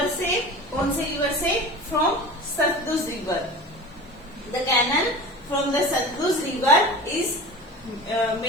से, कौन से रिवर से, from Sutlej river. The canal from the Sutlej river is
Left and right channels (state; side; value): normal; both; correlation 0.36